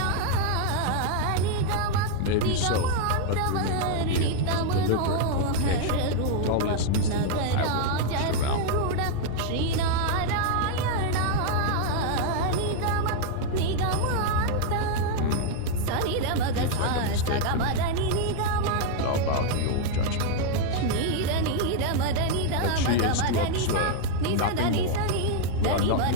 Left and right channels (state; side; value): different; both; correlation 0.00